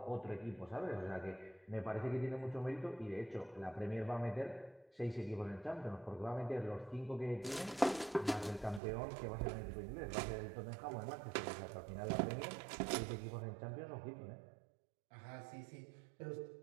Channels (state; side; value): drops out; left; at 8.8 s